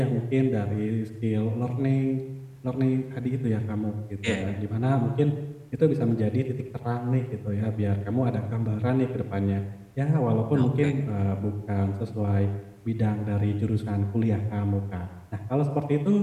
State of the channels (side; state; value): both; identical; correlation 1.00